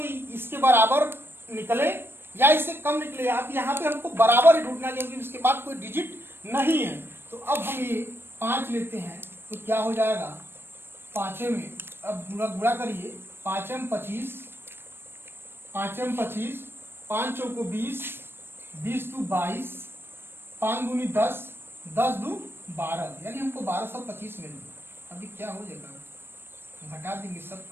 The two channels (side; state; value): left; late; 0.11 ms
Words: बराबर निकले या इससे कम निकले। आप यहाँ पे हमको बराबर ही ढूंढना, क्योंकि इसके बाद कोई डिजिट नहीं है। तो अब हम ये 5 लेते हैं, तो क्या हो जाएगा, 5 में अब गुणा करिए, 5 में 25, 5 चौको 20, 20 दू 22, 5 दूनी 10, 10 दू 12, यानी हमको 1225 मिल गया। अभी क्या हो जाएगा, घटा देंगे, सब